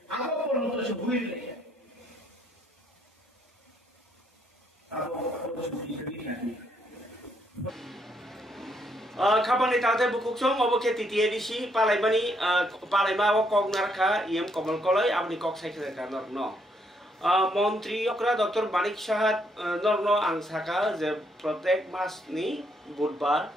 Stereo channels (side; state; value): both; normal; correlation 0.72